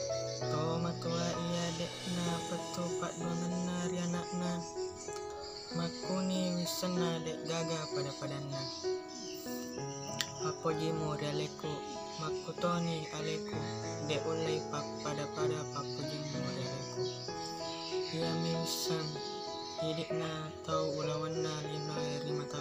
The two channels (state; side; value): identical; both; correlation 1.00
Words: To matua iya dekna patupat duanganna rianakna makuni wisana dek gaga pada padanna. Apo jimu rialeku makutoni aleku dek ulai pak pada papu jimu rialeku. Ia misan hidikna tau ulawanna lino eri